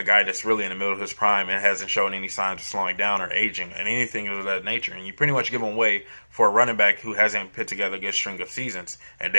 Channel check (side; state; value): both; inverted; correlation -1.00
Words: guy that's really in the middle of his prime and hasn't shown any signs of slowing down or aging and anything of that nature. And you pretty much give him away for a running back who hasn't put together a good string of seasons. And